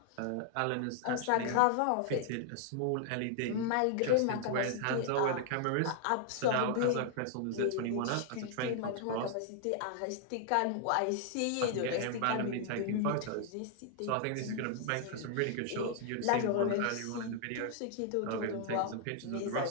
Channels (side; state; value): both; different; correlation 0.00